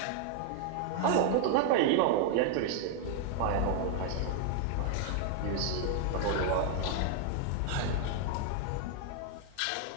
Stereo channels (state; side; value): different; both; correlation 0.00